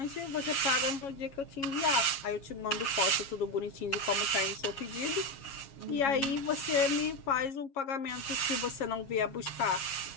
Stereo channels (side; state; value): right; late; 7.3 ms